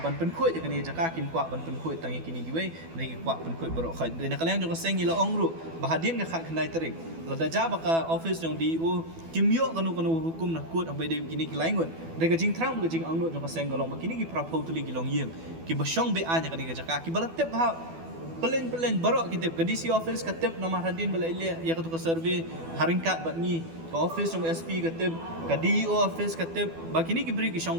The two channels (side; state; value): left; late; 12 ms